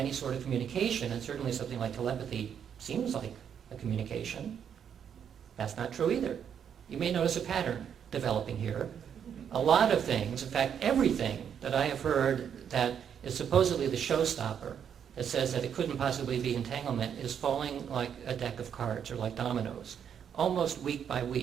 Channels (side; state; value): left; quieter; 8.2 dB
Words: sort of communication, and certainly something like telepathy seems like a communication. That's not true either. You may notice a pattern developing here. A lot of things, in fact everything that I have heard that is supposedly the showstopper, that says that it couldn't possibly be entanglement, is falling like a deck of cards or like dominoes, almost week by